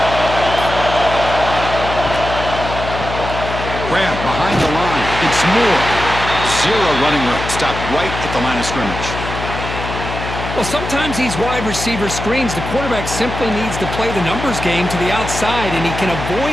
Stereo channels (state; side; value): noise; left; hum, 7 dB below the sound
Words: Grab behind the line. It's Moore. Zero running room. Stopped right at the line of scrimmage. Well, sometimes these wide receiver screens, the quarterback simply needs to play the numbers game to the outside, and he can